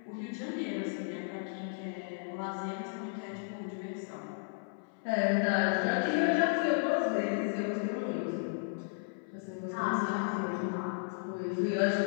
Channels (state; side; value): silent; right; 55 dB below the other